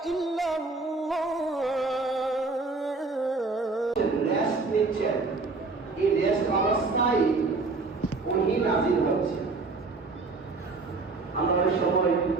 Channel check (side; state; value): left; quieter; 3.9 dB